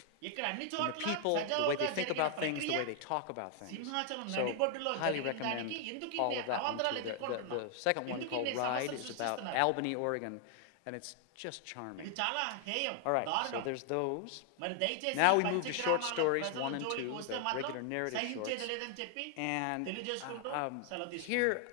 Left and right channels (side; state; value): both; different; correlation 0.00